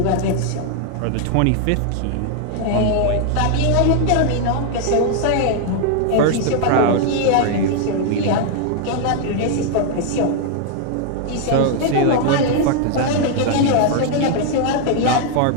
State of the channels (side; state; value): both; different; correlation 0.00